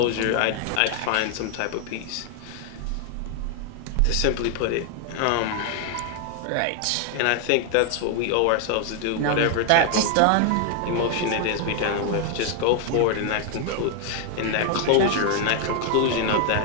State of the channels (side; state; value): both; different; correlation 0.00